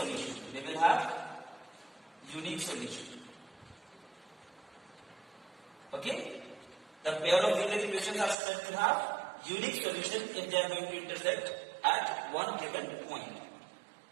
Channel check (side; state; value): left; drops out; at 8.3 s